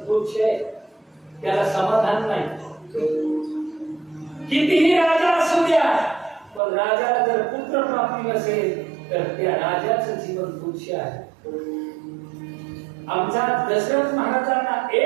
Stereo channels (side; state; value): left; drops out; at 6.6 s